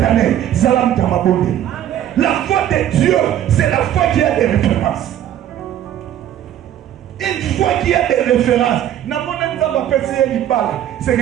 année, Zalam Tamabonde. La foi de Dieu, c'est la foi qui a des références. Une fois qu'il y a des références, c'est que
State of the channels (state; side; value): quieter; left; 11.2 dB